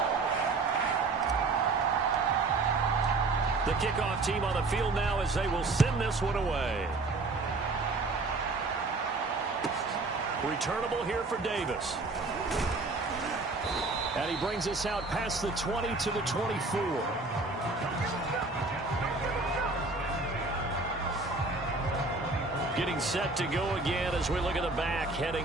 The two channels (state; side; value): quieter; left; 3.5 dB